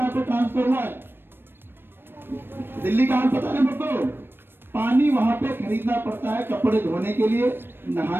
पे ट्रांसफर हुआ है, दिल्ली का हाल पता नहीं सबको। पानी वहां पे खरीदना पड़ता है, कपड़े धोने के लिए,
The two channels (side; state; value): left; late; 0.10 ms